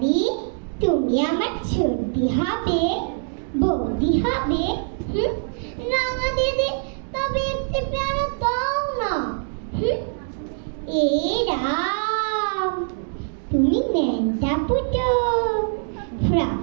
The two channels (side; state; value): left; silent; 63 dB below the other